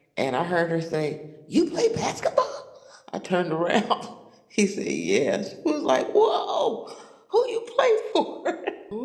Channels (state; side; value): identical; both; correlation 1.00